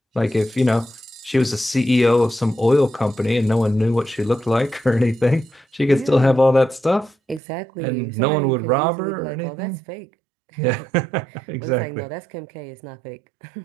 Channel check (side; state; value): left; drops out; at 7.4 s